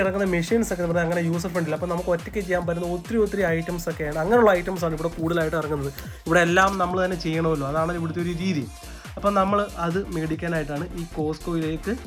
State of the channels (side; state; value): both; identical; correlation 1.00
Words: ഇറങ്ങുന്ന മെഷീൻസ് ഒക്കെ പറഞ്ഞാൽ അങ്ങനെ യൂസർ ഫ്രണ്ടില്ല. അപ്പോൾ നമുക്ക് ഒറ്റയ്ക്ക് ചെയ്യാൻ പറ്റുന്ന ഒത്തിരി ഐറ്റംസ് ഒക്കെയാണ്. അങ്ങനെയുള്ള ഐറ്റംസാണ് ഇവിടെ കൂടുതലായിട്ട് ഇറങ്ങുന്നത്. ഇവിടെ എല്ലാം നമ്മൾ തന്നെ ചെയ്യണമല്ലോ, അതാണ് ഇവിടുത്തെ ഒരു രീതി. അപ്പം നമ്മൾ അത് മേടിക്കാനായിട്ടാണ് ഈ കോസ്കോയിലേക്ക്